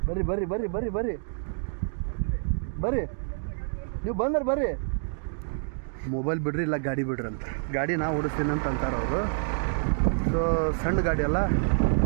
ಬರ್ರಿ ಬರ್ರಿ ಬರ್ರಿ ಬರ್ರಿ ಬರ್ರಿ ಬರ್ರಿ ನೀವು ಬಂದ್ರೆ ಬರ್ರಿ. ಮೊಬೈಲ್ ಬಿಡ್ರಿ ಇಲ್ಲ ಗಾಡಿ ಬಿಡ್ರಿ ಅಂತ. ಗಾಡಿ ನಾ ಓಡಿಸ್ತೀನಿ ಅಂತ ಅಂತಾರೆ ಅವರು. ಸೊ ಸಣ್ಣ ಗಾಡಿ ಅಲ್ಲ,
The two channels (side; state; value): left; silent; digital silence